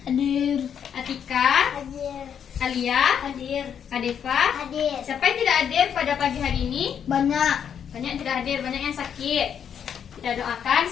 Hadir. Atika, Hadir. Alia, Hadir. Adefa. Hadir. Siapa yang tidak hadir pada pagi hari ini? Banyak. Banyak yang tidak hadir, banyak yang sakit. Kita doakan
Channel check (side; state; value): right; quieter; 8.2 dB